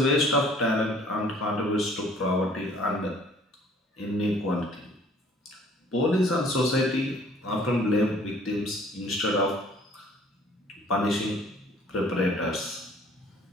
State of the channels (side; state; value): both; normal; correlation 0.56